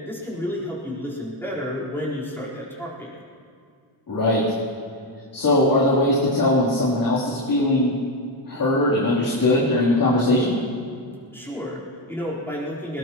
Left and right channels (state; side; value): normal; both; correlation 0.09